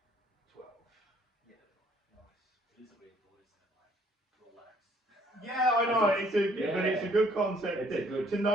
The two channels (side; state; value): both; normal; correlation 0.63